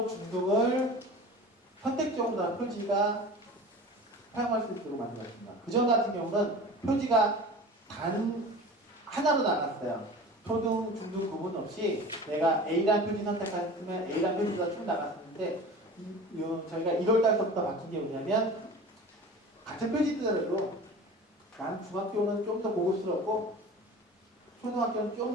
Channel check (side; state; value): both; normal; correlation 0.37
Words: 중등을 선택적으로 표지가 사용할 수 있도록 만들었습니다. 그전 같은 경우는 표지가 단 하나로 나갔어요. 초등, 중등 구분 없이 내가 A라는 표지 선택했으면 A라는 표지가 쭉 나갔었는데 저희가 1월달부터 바뀐 게 뭐냐면 같은 표지들도 난 중학교는 좀 더 고급스럽고 초등학교는